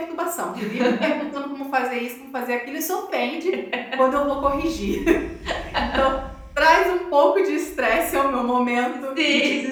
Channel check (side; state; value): both; identical; correlation 1.00